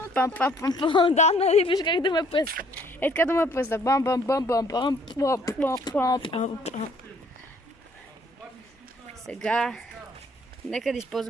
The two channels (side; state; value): both; normal; correlation 0.61